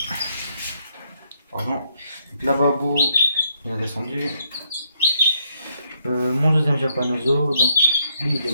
pardon, donc la babou, il est descendu. Mon deuxième japanoso, donc lui il est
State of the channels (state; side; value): inverted; both; correlation -0.76